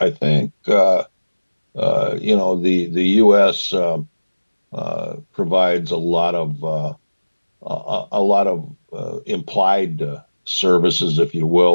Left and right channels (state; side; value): inverted; both; correlation -1.00